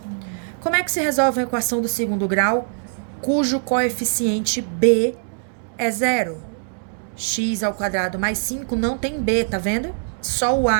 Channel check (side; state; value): left; silent; digital silence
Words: Como é que se resolve a equação do segundo grau, cujo coeficiente b é 0? X ao quadrado mais 5 não tem b, tá vendo? Só o